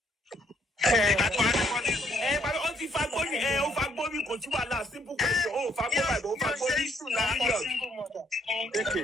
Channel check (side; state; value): both; normal; correlation 0.69